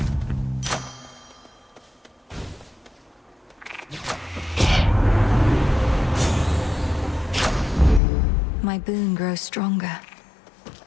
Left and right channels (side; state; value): right; drops out; at 8.0 s